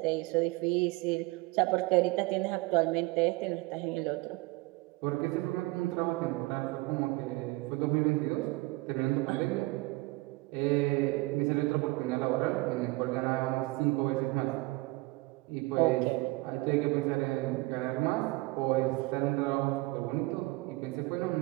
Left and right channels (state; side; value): quieter; left; 22.8 dB